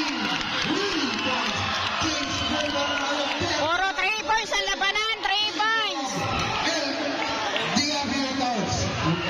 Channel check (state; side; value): identical; both; correlation 1.00